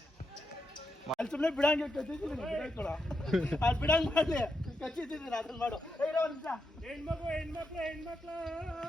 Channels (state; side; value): normal; both; correlation 0.84